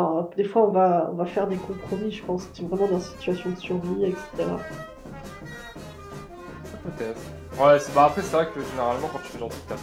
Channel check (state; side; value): identical; both; correlation 1.00